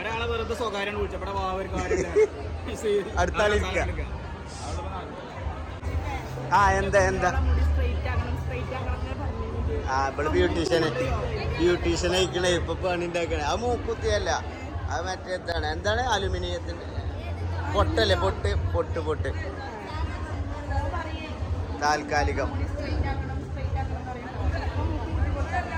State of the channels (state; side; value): identical; both; correlation 1.00